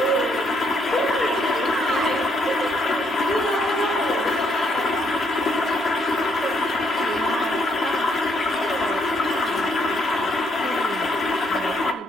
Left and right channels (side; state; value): both; normal; correlation 0.72